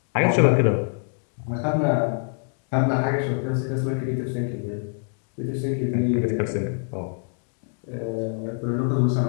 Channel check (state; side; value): silent; right; 55 dB below the other